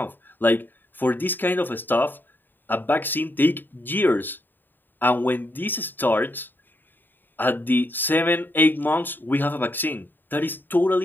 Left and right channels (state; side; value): late; right; 0.092 ms